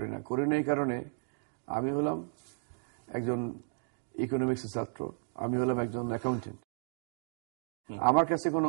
না। এই কারণে আমি হলাম একজন ইকোনমিক্সের ছাত্র, আমি হলাম একজন অ্যাকাউন্টেন্ট। আমার কাছে কোনো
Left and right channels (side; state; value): left; silent; 55 dB below the other